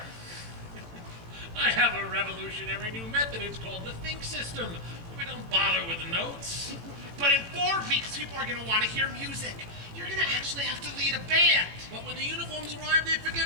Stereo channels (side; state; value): left; late; 18 ms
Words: I have a revolutionary new method. It's called the think system. We don't bother with the notes. But in 4 weeks, people are going to want to hear music. You're going to actually have to lead a band. But when the uniforms arrive, they forget